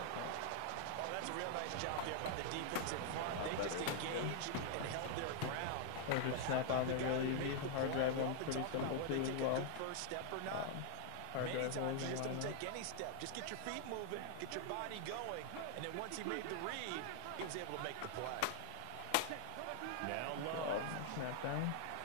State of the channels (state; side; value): different; both; correlation 0.00